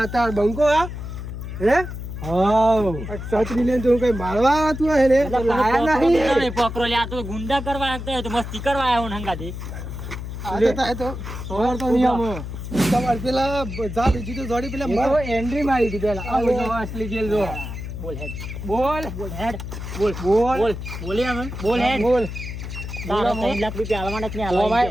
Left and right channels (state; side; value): noise; left; hum, 8 dB below the sound